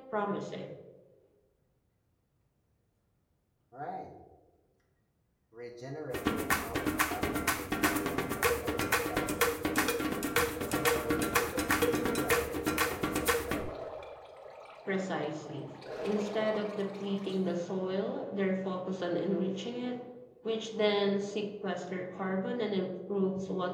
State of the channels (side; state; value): both; identical; correlation 1.00